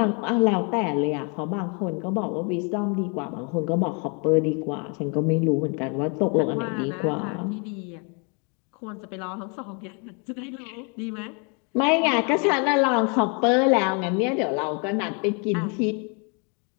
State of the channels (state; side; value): quieter; right; 35.2 dB